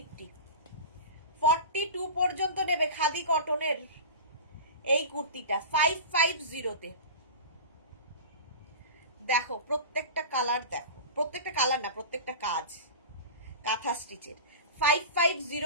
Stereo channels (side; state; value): both; inverted; correlation -0.30